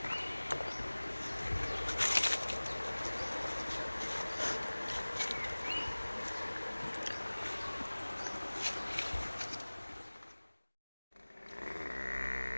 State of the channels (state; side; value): inverted; both; correlation -1.00